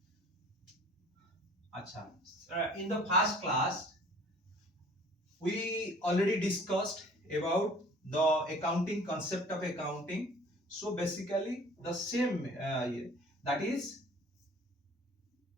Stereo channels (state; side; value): normal; both; correlation 0.50